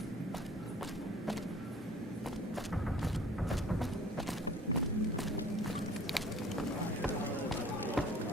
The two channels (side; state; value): both; normal; correlation 0.50